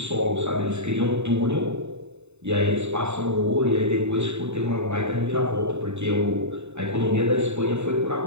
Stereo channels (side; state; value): left; late; 0.82 ms